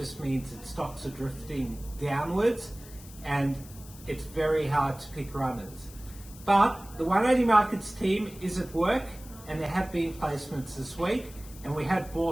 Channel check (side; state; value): left; noise; hiss, 19 dB below the sound